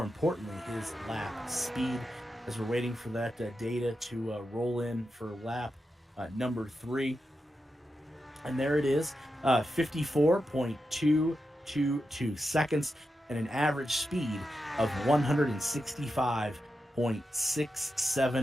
importantly, his lap speed, as we're waiting for that data to roll in for lap number 3. And there it is, 54.222 seconds and an average speed of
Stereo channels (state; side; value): normal; both; correlation 0.89